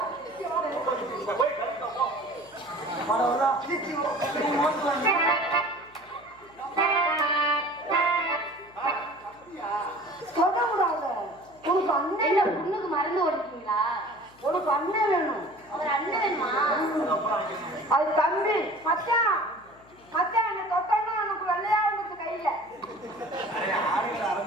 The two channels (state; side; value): noise; left; hum, 27 dB below the sound